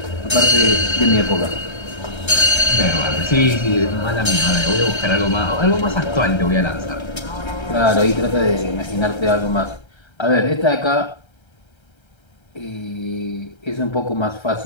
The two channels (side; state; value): right; late; 1.3 ms